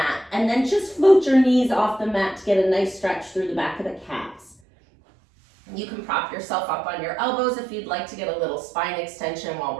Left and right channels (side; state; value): left; drops out; at 4.5 s